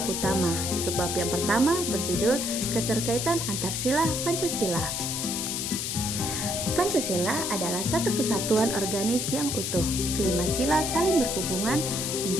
utama. Subbab yang pertama berjudul Keterkaitan Antarsila Pancasila. Pancasila adalah satu kesatuan organis yang utuh. Kelima sila saling berhubungan,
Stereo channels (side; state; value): left; noise; hiss, 2 dB below the sound